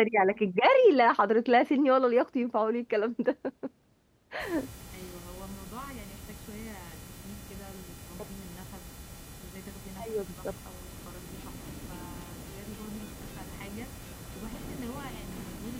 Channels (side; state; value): both; identical; correlation 1.00